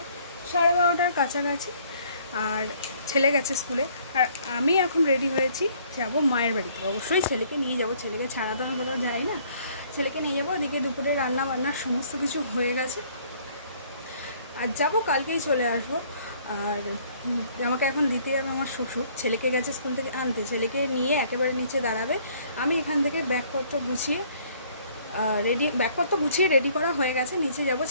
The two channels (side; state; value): both; inverted; correlation -0.60